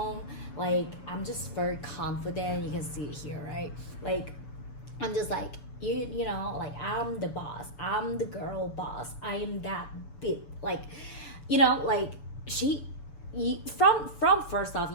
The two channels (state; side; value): late; right; 6.9 ms